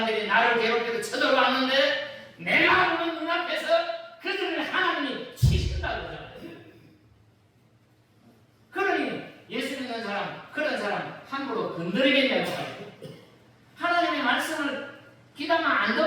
나를 괴롭혀도 쳐들어왔는데 내가 보는 눈앞에서 그들을 하나님이 치신다고 그러잖아요. 그러니 예수 믿는 사람, 그런 사람 함부로 건드리겠냐고 말이에요. 하나님의 말씀을 귀담아 안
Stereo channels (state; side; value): identical; both; correlation 1.00